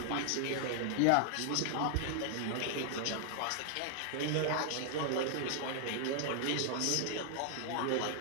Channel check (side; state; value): both; different; correlation 0.00